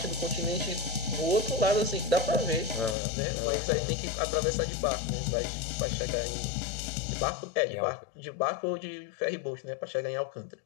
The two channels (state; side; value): drops out; right; at 3.0 s